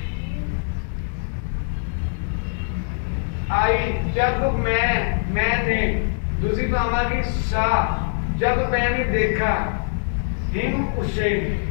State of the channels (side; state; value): right; silent; digital silence